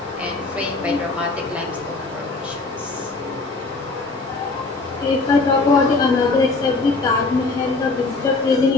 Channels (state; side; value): quieter; right; 3.6 dB